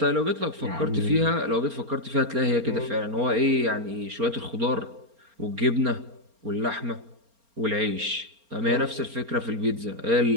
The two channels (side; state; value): left; late; 4.3 ms